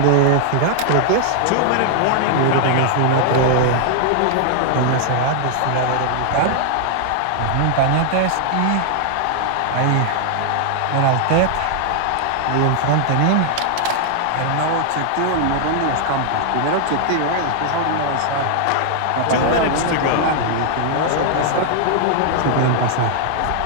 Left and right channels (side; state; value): both; different; correlation 0.00